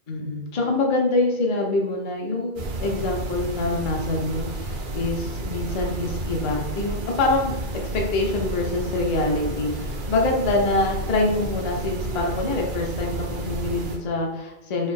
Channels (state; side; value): late; left; 2.3 ms